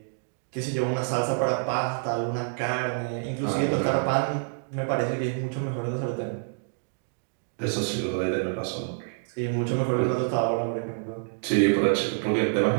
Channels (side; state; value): left; silent; digital silence